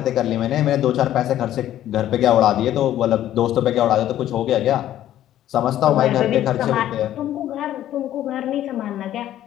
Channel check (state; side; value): quieter; right; 12.4 dB